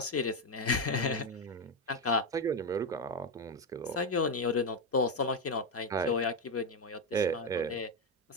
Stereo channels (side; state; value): both; normal; correlation 0.08